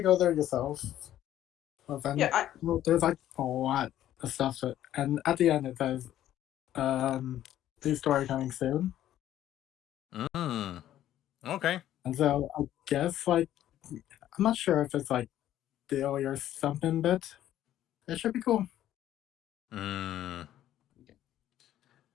go there yourself. Well, then, there's like a lot of stuff, and at the end it says, "New story coming soon." Okay. And so I guess like I'm not sure if it's like daily or something, but it should be cool.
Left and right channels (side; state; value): right; quieter; 12.3 dB